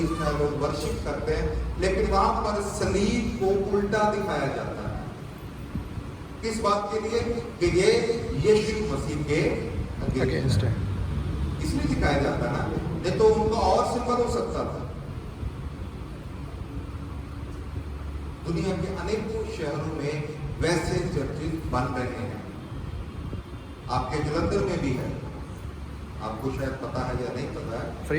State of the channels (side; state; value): both; identical; correlation 1.00